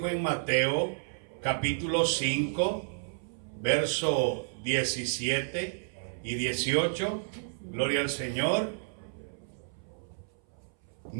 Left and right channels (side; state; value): left; silent; 57 dB below the other